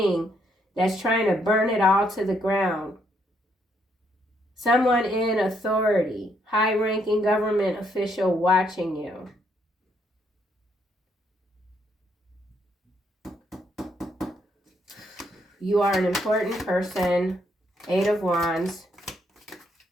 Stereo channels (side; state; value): both; normal; correlation 0.73